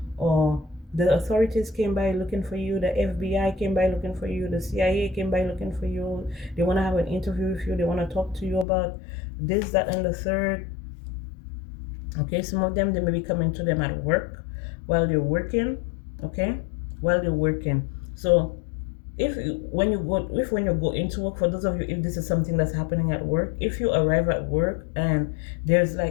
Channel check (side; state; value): right; drops out; at 8.7 s